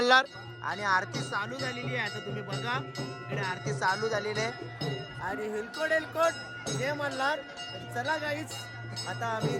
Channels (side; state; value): both; identical; correlation 1.00